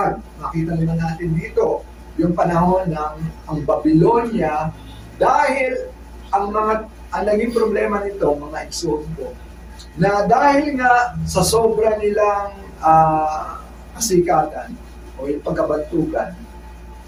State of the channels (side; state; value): both; identical; correlation 1.00